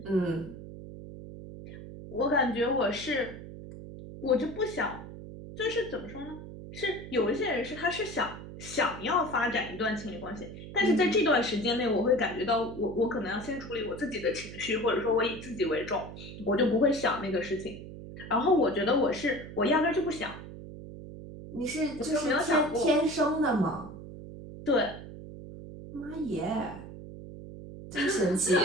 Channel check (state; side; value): noise; right; hum, 12 dB below the sound